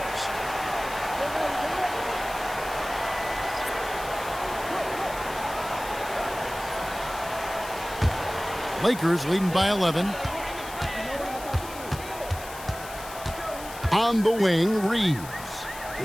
Lakers leading by 11. On the wing, Reeves.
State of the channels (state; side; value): noise; left; hiss, 14 dB below the sound